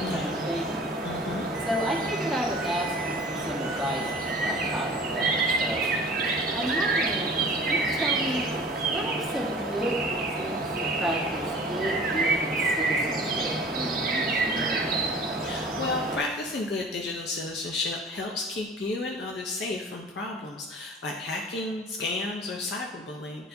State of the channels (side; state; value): both; normal; correlation 0.44